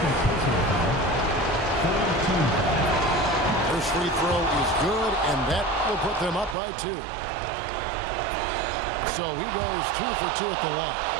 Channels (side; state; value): left; drops out; at 6.6 s